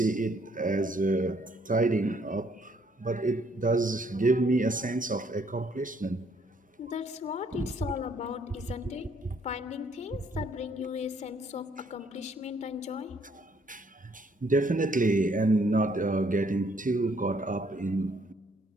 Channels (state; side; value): normal; both; correlation 0.66